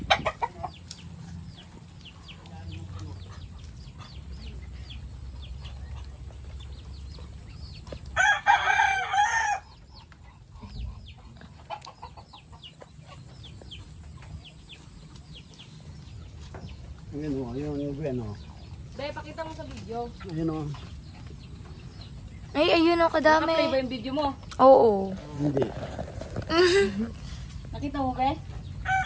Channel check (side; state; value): both; identical; correlation 1.00